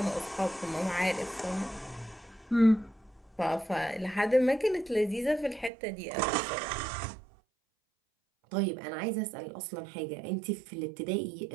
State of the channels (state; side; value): drops out; left; at 5.7 s